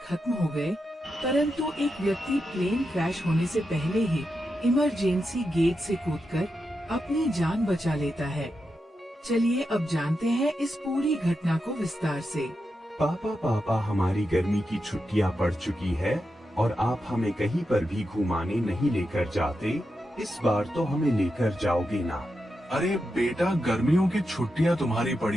खत्म हो गए, परंतु एक व्यक्ति प्लेन क्रैश होने से पहले ही इमरजेंसी गेट से कूदकर अपनी जान बचा लेता है। चलिए अब जानते हैं इस पूरी घटना को विस्तार से। पापा हमारी गर्मी की छुट्टियां पड़ चुकी है और आप हमें कहीं पर भी घुमाने नहीं लेकर जाते। इस बार तो हमें लेकर जाओगे ना? अरे बेटा, गर्मियों की छुट्टियां तुम्हारी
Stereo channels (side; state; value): both; normal; correlation 0.87